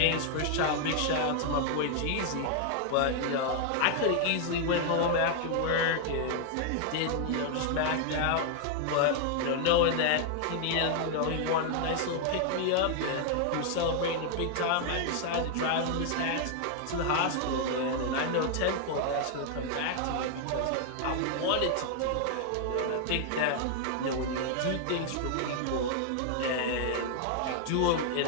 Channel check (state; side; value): different; both; correlation 0.00